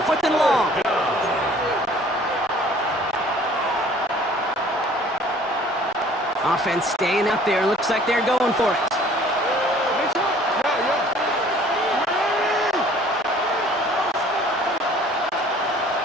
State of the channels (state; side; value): normal; both; correlation 0.53